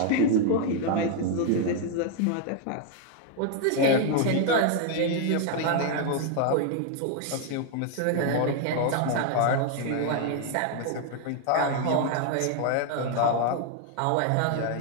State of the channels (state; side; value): different; both; correlation 0.00